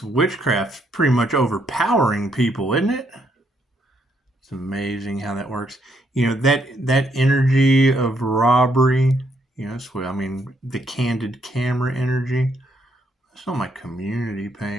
witchcraft's pretty much overpowering people, isn't it? It's amazing how that works. You know, that energy of robbery, that's what I mean, the candid camera energy. It's on my community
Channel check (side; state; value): both; normal; correlation 0.73